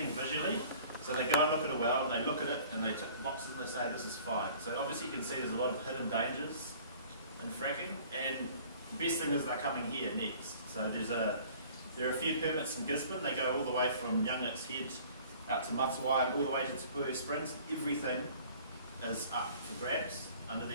visually. So they go and look at a well, and they look at it, and they tick the boxes, and they say this is fine. So obviously you can see there's a lot of hidden dangers in fracking, and the best thing is they're coming here next. So there are a few permits in Gisborne. They go all the way from Youngit's Head out to Matawai and all the way to Te Springs. Everything is up for grabs under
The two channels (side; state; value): both; inverted; correlation -0.50